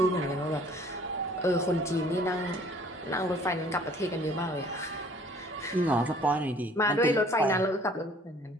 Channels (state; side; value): normal; both; correlation 0.55